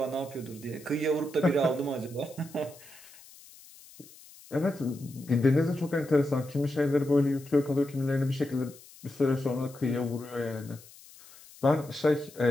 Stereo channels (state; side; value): noise; left; hiss, 21 dB below the sound